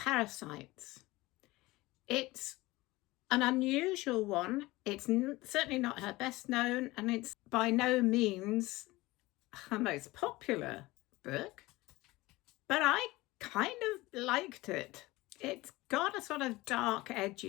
It's an unusual one. It's certainly not her best known, and it's by no means her most popular book, but I kind of liked it. It's got a sort of dark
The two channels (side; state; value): right; quieter; 20.0 dB